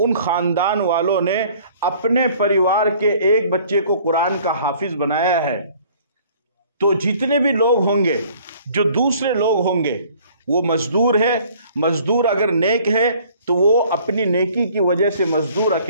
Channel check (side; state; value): both; inverted; correlation -0.55